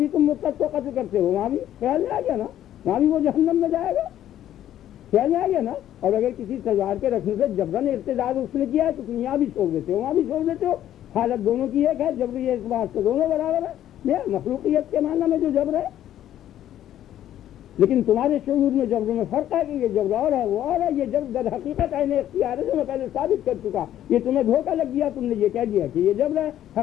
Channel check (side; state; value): right; quieter; 11.8 dB